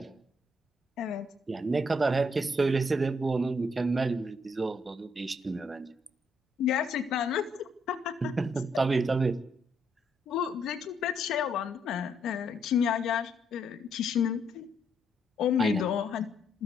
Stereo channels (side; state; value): both; normal; correlation 0.73